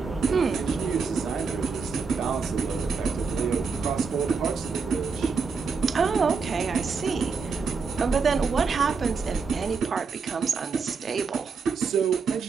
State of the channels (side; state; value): left; quieter; 5.0 dB